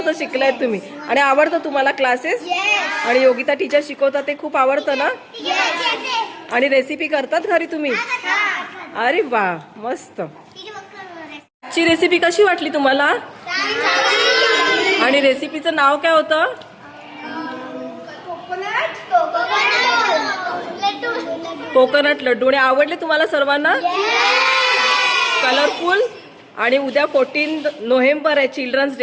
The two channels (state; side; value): identical; both; correlation 1.00